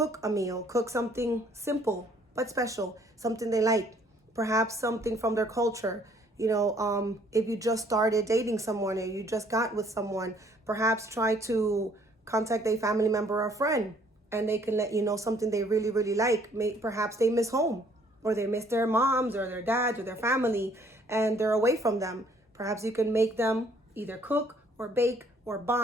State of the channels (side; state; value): both; normal; correlation 0.62